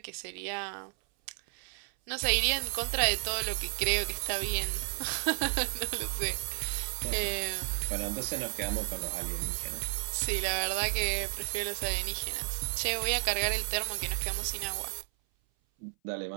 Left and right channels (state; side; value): silent; left; 56 dB below the other